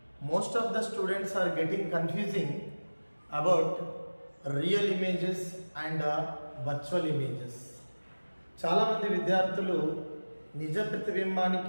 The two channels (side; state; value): both; inverted; correlation -1.00